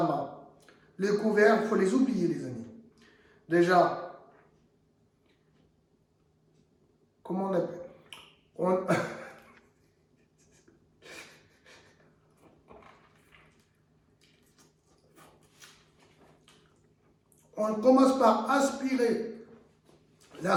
main. Les couverts, il faut les oublier, les amis. Déjà, comment on appelle? On commence par aspirer la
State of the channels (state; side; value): identical; both; correlation 1.00